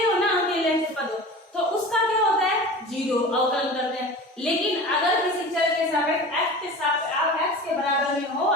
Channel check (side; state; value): both; normal; correlation 0.36